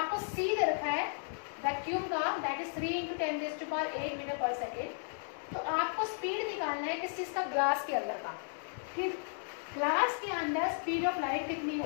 c दे रखा है वैक्यूम का, that is 3 × 10⁸ metre per second. तो आपको स्पीड निकालना है किस चीज का? ग्लास के अंदर का। फिर ग्लास के अंदर स्पीड ऑफ लाइट कितनी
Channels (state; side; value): silent; right; digital silence